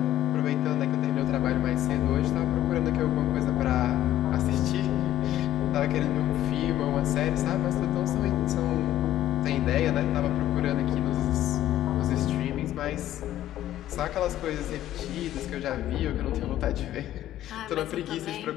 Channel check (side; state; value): right; quieter; 13.1 dB